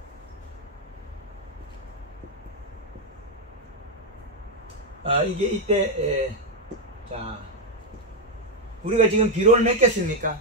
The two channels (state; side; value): normal; both; correlation 0.02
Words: 이게 이때 자, 우리가 지금 비료를 몇 개 씁니까?